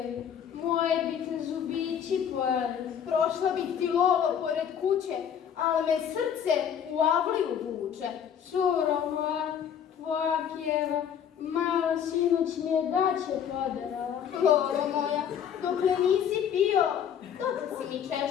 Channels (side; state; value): right; quieter; 8.5 dB